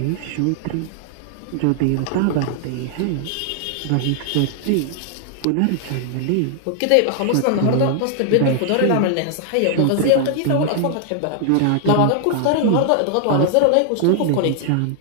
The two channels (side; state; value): both; different; correlation 0.00